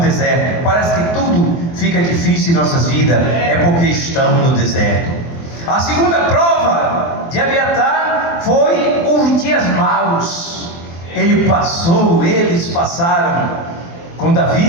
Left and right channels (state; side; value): late; right; 24 ms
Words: Parece que tudo fica difícil em nossas vidas, é porque estamos no deserto. A segunda prova de Abiatar foi os dias maus. Eles passaram com